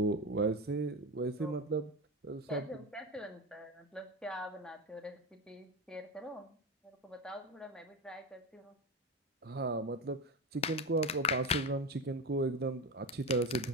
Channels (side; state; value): both; normal; correlation 0.19